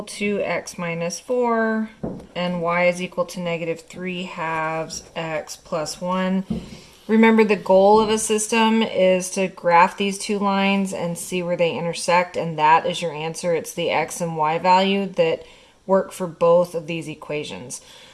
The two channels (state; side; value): identical; both; correlation 1.00